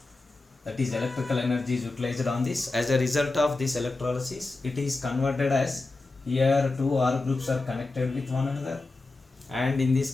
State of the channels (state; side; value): quieter; right; 3.3 dB